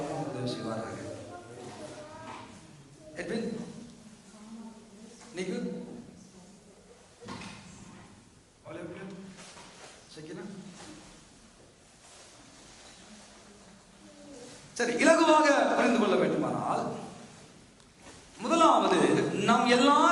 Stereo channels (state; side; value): identical; both; correlation 1.00